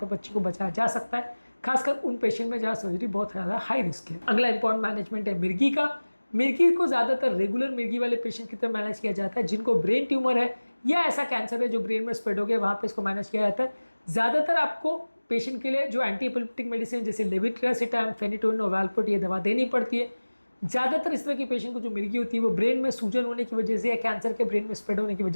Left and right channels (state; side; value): inverted; both; correlation -1.00